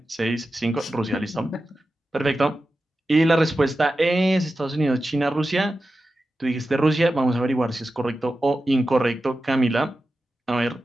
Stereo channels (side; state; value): both; normal; correlation 0.92